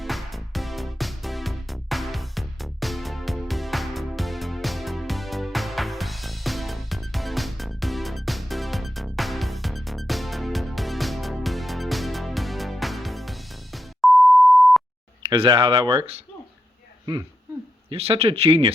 Is that how that works? Yeah. You're such a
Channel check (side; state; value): both; normal; correlation 0.85